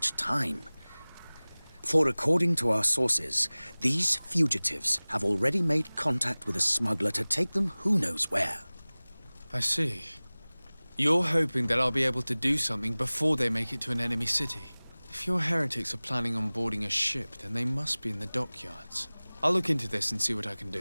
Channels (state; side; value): inverted; both; correlation -1.00